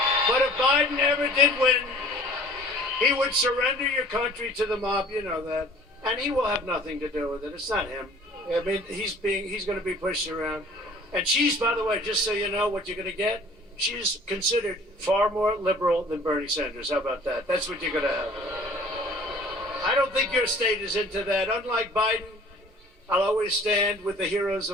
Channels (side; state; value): both; normal; correlation 0.49